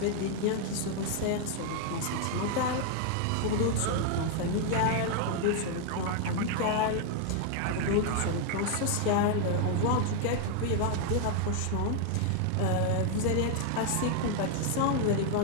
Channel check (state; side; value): different; both; correlation 0.00